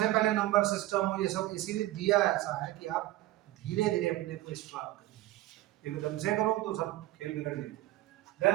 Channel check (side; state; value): left; quieter; 16.6 dB